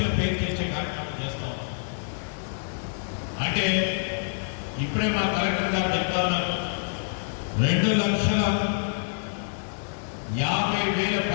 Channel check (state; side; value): silent; right; 60 dB below the other